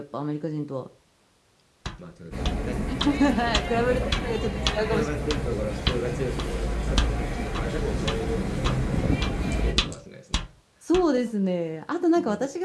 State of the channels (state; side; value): identical; both; correlation 1.00